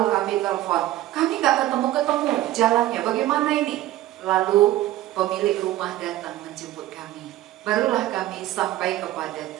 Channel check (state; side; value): quieter; left; 14.9 dB